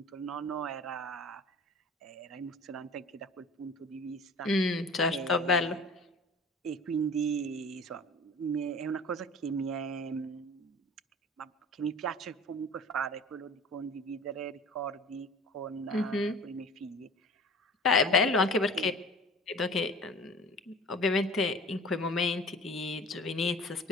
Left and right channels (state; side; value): normal; both; correlation 0.42